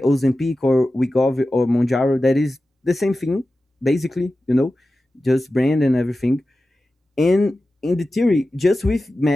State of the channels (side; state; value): both; normal; correlation 0.94